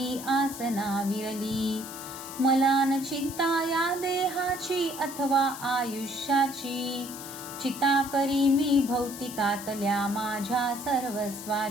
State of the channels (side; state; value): left; noise; hiss, 12 dB below the sound